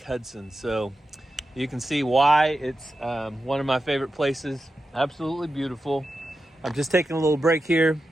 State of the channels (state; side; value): normal; both; correlation 0.91